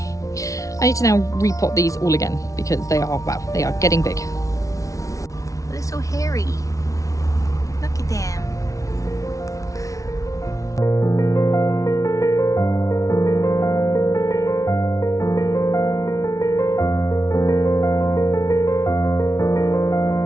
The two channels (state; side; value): late; right; 0.16 ms